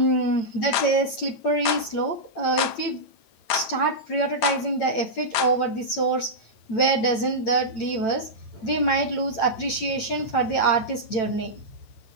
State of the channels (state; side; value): late; right; 9.1 ms